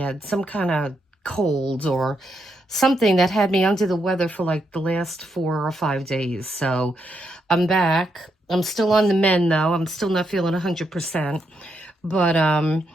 some kind of cold or something that had me under the weather for like the last 4 or 5 days. So I'm back. I'm still on the mend though. I'm still not feeling 100%, but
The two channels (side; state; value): both; normal; correlation 0.80